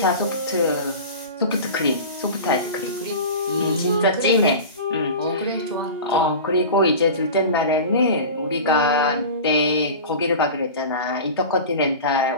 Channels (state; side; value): inverted; both; correlation -0.32